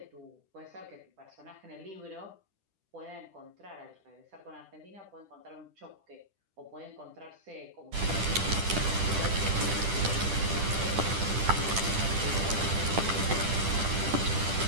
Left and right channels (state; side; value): late; left; 10 ms